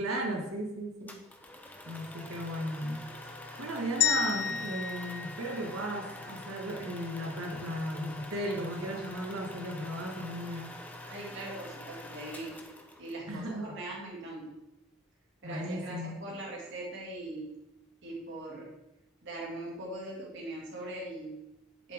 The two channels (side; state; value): both; normal; correlation 0.42